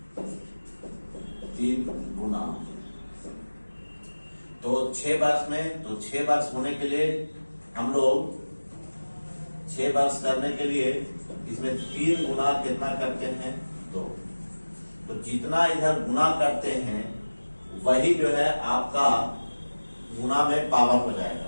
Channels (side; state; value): both; inverted; correlation -1.00